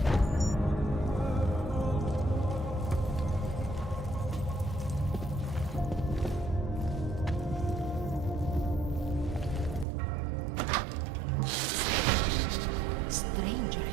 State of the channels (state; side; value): drops out; left; at 9.9 s